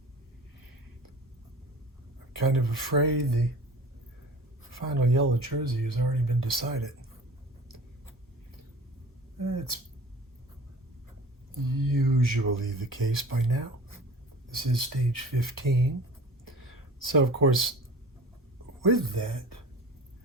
kind of afraid the final yellow jersey has already been decided. It's usually the case by now. This is stage 15. So, of course, with that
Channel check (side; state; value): both; normal; correlation 0.41